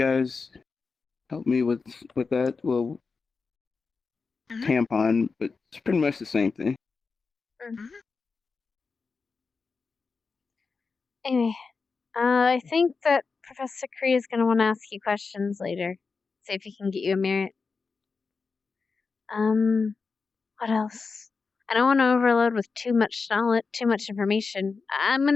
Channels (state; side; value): quieter; right; 4.7 dB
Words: helped me with that. Well, tampon, but it's pretty much the same thing. Anyway, I think that Professor Cree is going to want to ask you questions later. See if he can get you a merit. What else? I don't want to overload with too much knowledge, too much information. I'm